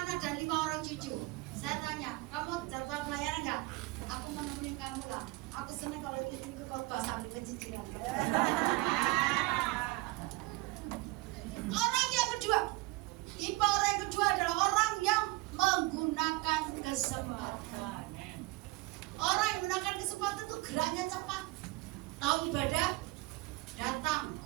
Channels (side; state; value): left; quieter; 21.8 dB